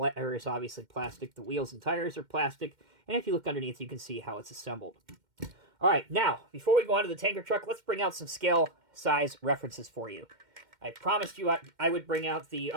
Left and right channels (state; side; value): late; left; 2.1 ms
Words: is obviously plastic. The wheels and tires are plastic. And if you look underneath, you can see how it's assembled. All right, now, before we go on to the tanker truck, let's bring out some scale size references for you. I promised you I would bring out the